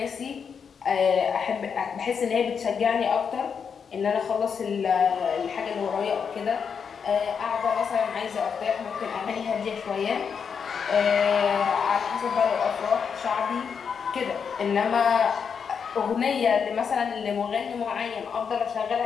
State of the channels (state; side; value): quieter; right; 6.6 dB